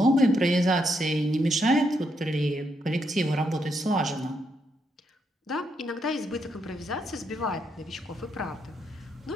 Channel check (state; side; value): normal; both; correlation 0.78